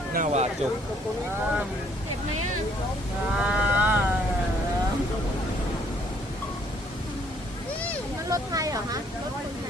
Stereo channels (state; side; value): normal; both; correlation 0.64